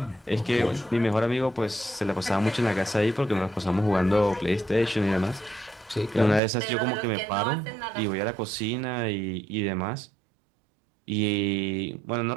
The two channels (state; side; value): drops out; left; at 6.4 s